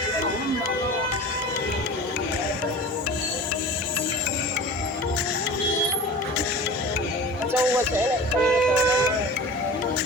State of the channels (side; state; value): both; normal; correlation 0.36